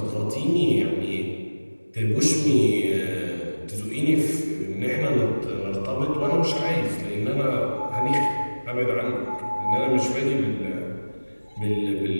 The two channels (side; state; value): both; inverted; correlation -1.00